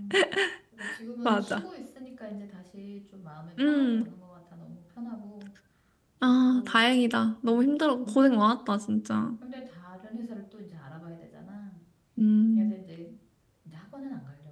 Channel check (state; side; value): identical; both; correlation 1.00